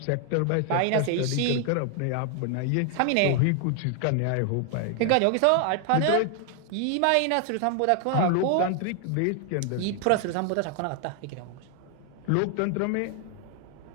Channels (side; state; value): both; different; correlation 0.00